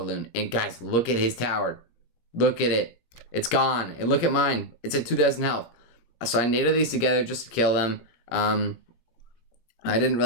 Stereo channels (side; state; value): right; late; 17 ms